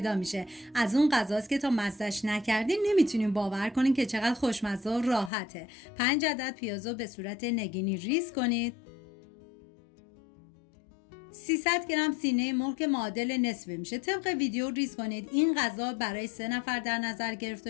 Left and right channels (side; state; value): right; drops out; at 5.3 s